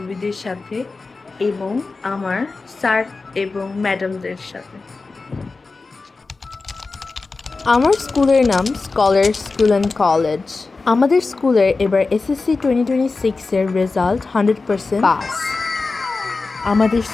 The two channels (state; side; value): quieter; right; 3.9 dB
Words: সাথে এবং আমার স্যার এবং ম্যাডামদের সাথে। আমার স্কুলের নাম স্কলার স্কুল অ্যান্ড কলেজ। আমাদের স্কুলের এবার এসএসসি 2026-এর রেজাল্ট 100% পাস। আমাদের